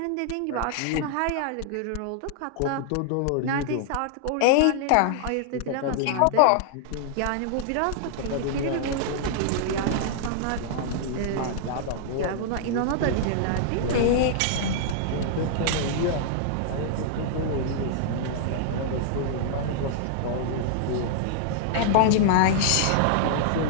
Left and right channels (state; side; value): different; both; correlation -0.01